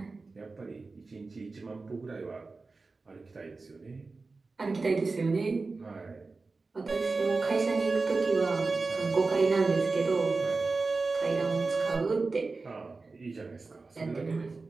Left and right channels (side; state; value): left; quieter; 3.9 dB